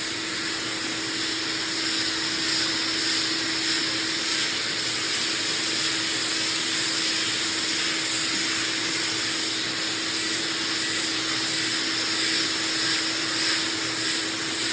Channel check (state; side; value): identical; both; correlation 1.00